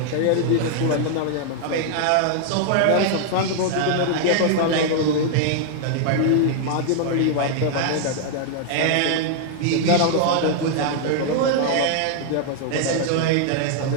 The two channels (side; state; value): both; different; correlation 0.00